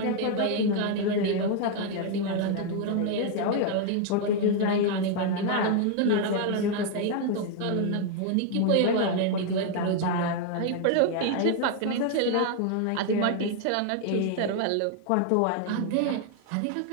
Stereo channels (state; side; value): different; both; correlation 0.00